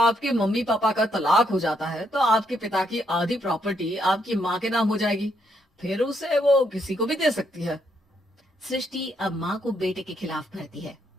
मम्मी पापा का तलाक हो जाता है तो आपके पिता की आधी प्रॉपर्टी आपकी माँ के नाम हो जाएगी। फिर उसे वो किसी को भी दे सकती है। सृष्टि अब माँ को बेटे के खिलाफ भरती है।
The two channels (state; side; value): normal; both; correlation 0.75